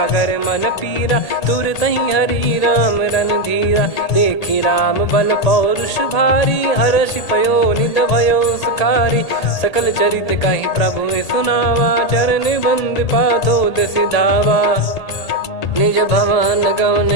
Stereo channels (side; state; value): right; late; 1.8 ms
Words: मन पीरा, तुरतहि हरि राम रणधीरा। देखि राम बल पौरुष भारी, हर्षि पयो निध भयो सुखारी। सकल चरित कहि प्रभु सुनावा, चरण बंद पादोद सिधावा। निज भवन गौन